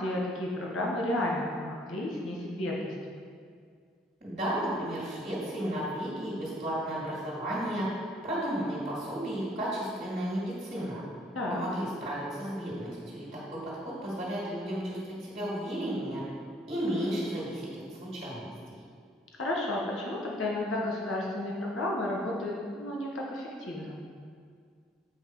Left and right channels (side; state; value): both; normal; correlation 0.61